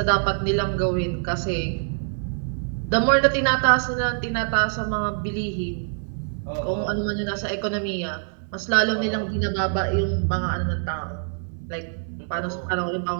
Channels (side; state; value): left; silent; 62 dB below the other